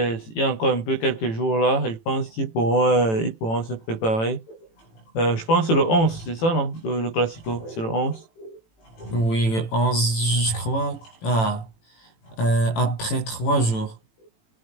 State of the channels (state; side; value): late; right; 18 ms